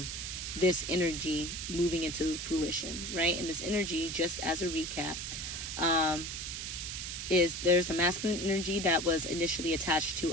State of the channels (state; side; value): noise; right; hiss, 5 dB below the sound